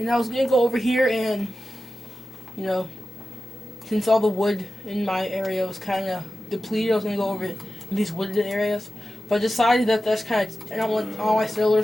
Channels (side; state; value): both; normal; correlation 0.93